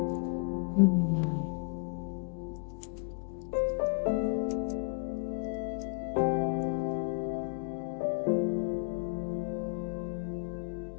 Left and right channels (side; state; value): right; quieter; 37.1 dB